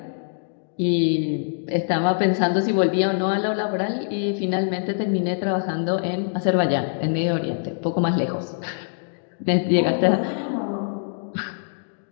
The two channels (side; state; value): right; silent; digital silence